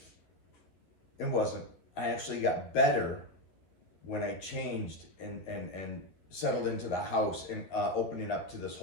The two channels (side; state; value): right; late; 12 ms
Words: It wasn't. I actually got better when I changed and settled into the house and opening up to this